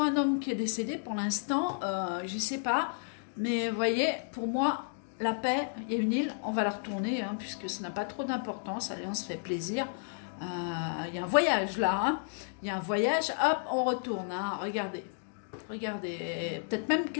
un homme qui est décédé, pour l'instant, je ne sais pas. Mais vous voyez, pour moi, la paix, il y a une île, on va la retourner, hein, puisque ça n'a pas trop d'importance. Allez, on se fait plaisir. Il y a un voyage là, hein. Il y a un voyage, hop, on retourne. Hein. Regardez, peut-être même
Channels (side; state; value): right; silent; digital silence